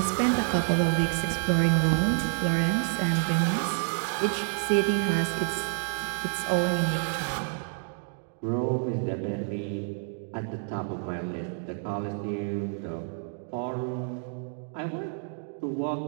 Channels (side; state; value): left; silent; 59 dB below the other